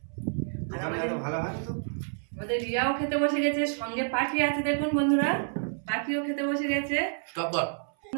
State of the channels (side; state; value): left; silent; 59 dB below the other